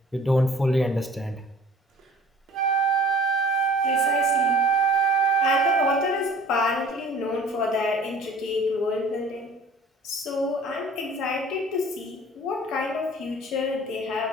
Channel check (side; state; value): both; normal; correlation 0.49